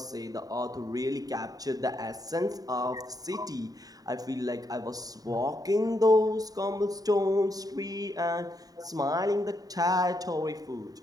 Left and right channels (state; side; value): late; left; 0.18 ms